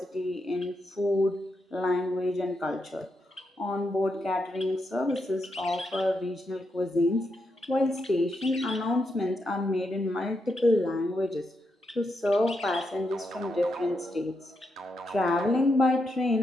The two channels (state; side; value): normal; both; correlation 0.83